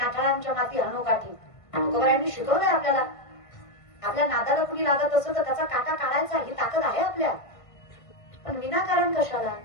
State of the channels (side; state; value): right; late; 1.5 ms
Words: माती हनुकाठी. तुकोबारायांनी शिकवलंय आपल्याला. आपल्या नादाला कुणी लागत असं तर त्याचा काटा काढायचा ही ताकद आहे आपल्या. पण विनाकारण कशाला.